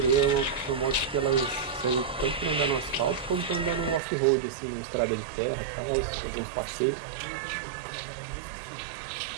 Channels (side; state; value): left; drops out; at 4.0 s